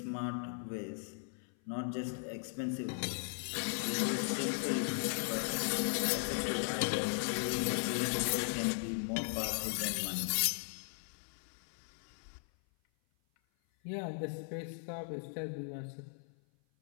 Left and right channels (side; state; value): right; silent; 53 dB below the other